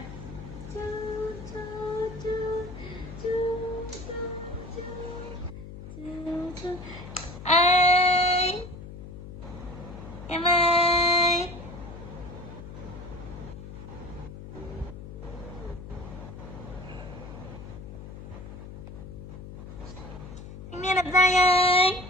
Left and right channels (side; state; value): left; noise; hum, 12 dB below the sound